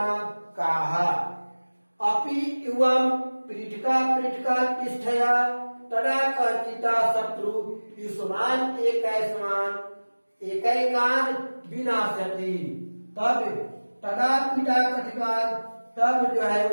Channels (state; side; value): inverted; both; correlation -1.00